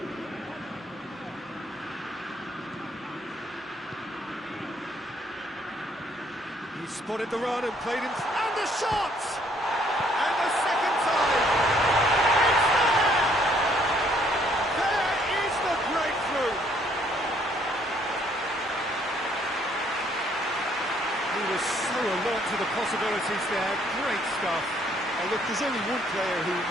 He spotted the run and played him, and the shot! And the second time! It's there! There is the breakthrough! He was so alert to the possibilities there, great stuff. Look, there's only one player who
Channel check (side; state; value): both; normal; correlation 0.65